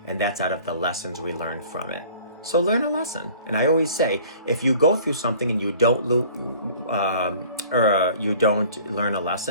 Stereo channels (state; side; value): inverted; both; correlation -0.49